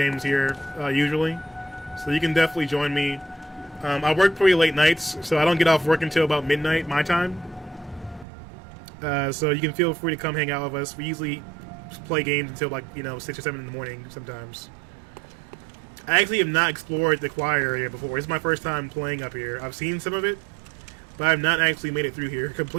here usually, so you can definitely join me. I work pretty late nights, so I don't get off work until about midnight my time. So you can feel free to come hang out with us. We usually play games until 6 or 7 in the morning sometimes. I actually have not explored the quiet area before. It's my first time playing up here. I've seen some of it, but I've not actually made it through here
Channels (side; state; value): left; drops out; at 8.2 s